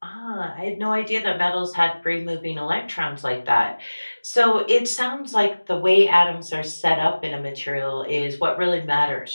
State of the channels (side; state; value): both; inverted; correlation -1.00